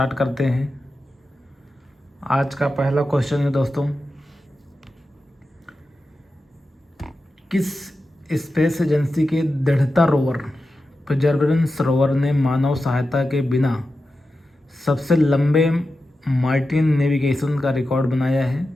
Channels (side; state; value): both; normal; correlation 0.91